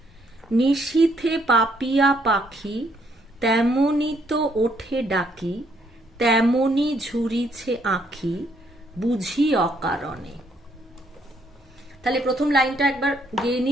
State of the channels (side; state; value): both; normal; correlation 0.70